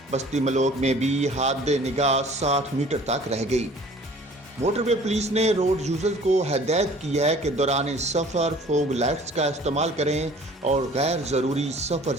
बस्ती मलोक में भी हद निगाह 60 मीटर तक रह गई। मोटरवे पुलिस ने रोड यूजर्स को हदायत की है कि दौरान सफ़र फोग लाइट्स का इस्तेमाल करें और गैर ज़रूरी सफ़र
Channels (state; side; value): normal; both; correlation 0.50